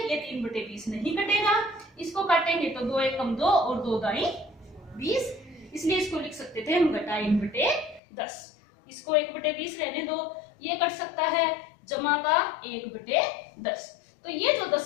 ये 3/20 नहीं कटेगा, इसको काटेंगे तो 2 एकम 2 और 2 दाई 20, इसलिए इसको लिख सकते थे हम घटा 1/10। इसको 1/20 रहने दो, ये कट सकता है, जमा का 1/10। तो ये जो 10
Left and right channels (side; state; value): right; drops out; at 8.0 s